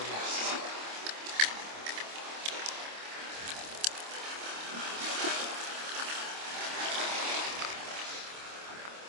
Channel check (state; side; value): late; left; 26 ms